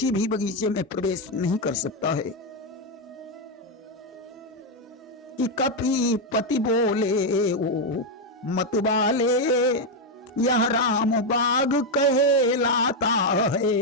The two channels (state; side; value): normal; both; correlation 0.04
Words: भी बगीचे में प्रवेश नहीं कर सकता है। कि कपि पति बोले ओ मत वाले, यह राम बाग कहलाता